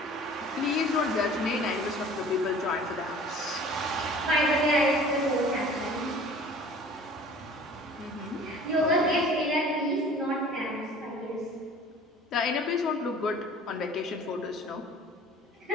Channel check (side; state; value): both; normal; correlation 0.47